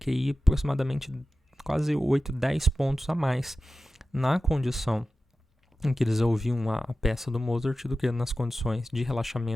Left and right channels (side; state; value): both; normal; correlation 0.94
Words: aproximadamente quase 8, 10 pontos a mais na condição em que eles ouviam a peça do Mozart do que nas condições de